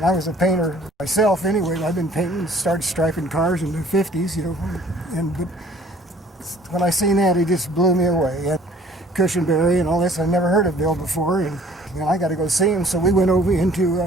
I was a painter myself anyway. I've been painting, started striping cars in the 50s, you know. But when I seen that, it just blew me away. And Cushenbery and all this, I never heard of Bill before, and you know, I got to go see him. So we went over into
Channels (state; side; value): normal; both; correlation 0.54